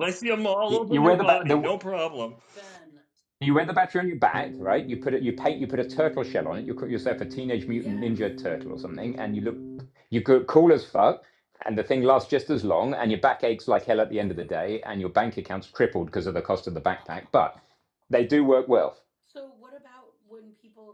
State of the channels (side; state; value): both; identical; correlation 1.00